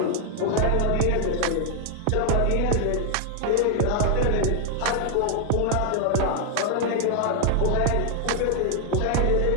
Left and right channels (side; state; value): both; different; correlation 0.00